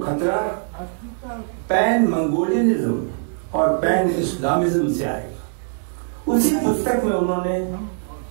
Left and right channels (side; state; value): left; silent; digital silence